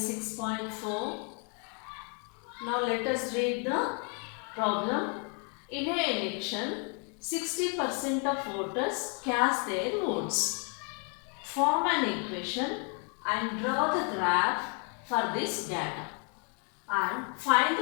6.4. Now let us read the problem. In an election, 60% of voters cast their votes. Form an equation and draw the graph for this data and find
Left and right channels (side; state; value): right; quieter; 38.3 dB